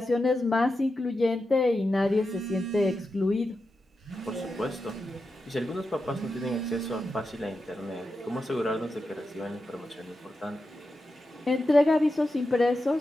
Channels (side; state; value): both; normal; correlation 0.89